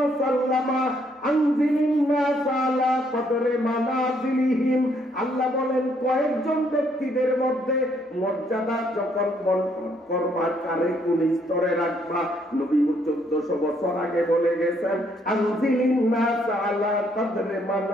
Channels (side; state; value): both; normal; correlation 0.69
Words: انزل الناس على قدر منازلهم। আল্লাহ বলেন কয়েকজন ব্যক্তিদের মধ্যে মর্যাদা যখন বন্টন করবা কারে কোন স্তরে রাখবা, নবী 1400 বছর আগে বলে গেছেন আনজিলিন নাস আলা কদরে